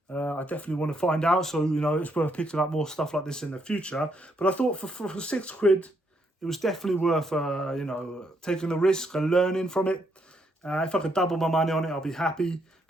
I definitely want to find out, so, you know, it's worth picking up more stuff like this in the future. But I thought for £6, it was definitely worth, you know, taking the risk and learning from it. If I could double my money on it, I'll be happy.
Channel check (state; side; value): normal; both; correlation 0.75